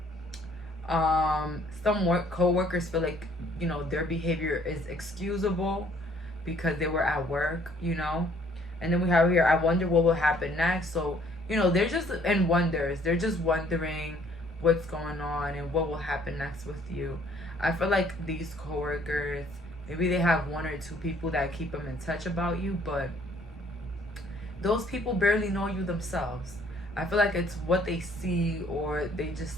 Some co-workers feel like, you know, their behavior is excusable because they were at work, you know. And then we have here, I wonder what will happen next. So, you know, they're just in wonders. They're just wondering what's going on and what will happen next with you. I feel like these coworkers, maybe they have 1 or 2 people that keep them in touch about you, but those people barely know you themselves. I feel like it's what they see or they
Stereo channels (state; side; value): normal; both; correlation 0.61